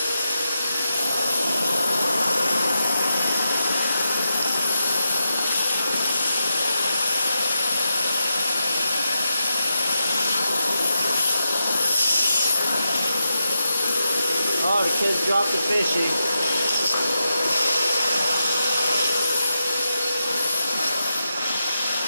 Oh, the kids dropped the fishy.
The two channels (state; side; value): inverted; both; correlation -0.87